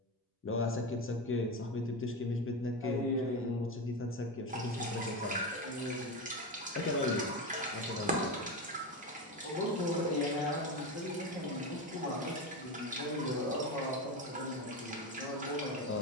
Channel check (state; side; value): normal; both; correlation 0.18